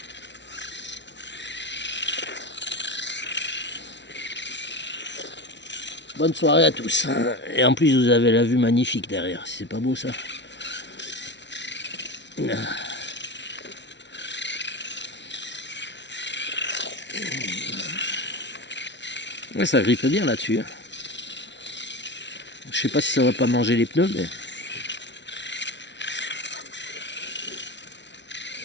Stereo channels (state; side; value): late; right; 0.51 ms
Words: Bonne soirée à tous. Et en plus, vous avez la vue magnifique derrière. C'est pas beau ça? Ouais, ça grippe bien là-dessus. Je sais pas si ça va pas manger les pneus, mais...